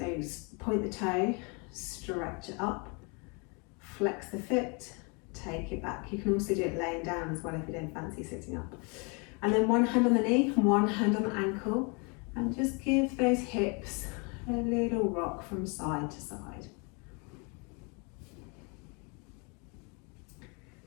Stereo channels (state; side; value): quieter; right; 32.8 dB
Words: point the toe, stretch it up. Flex the foot, take it back. You can also do it laying down as well if you don't fancy sitting up. And then one hand on the knee, one hand on the ankle, and just give those hips a little rock from side to side.